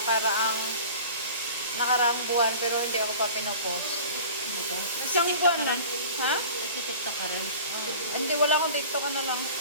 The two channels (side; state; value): both; inverted; correlation -0.41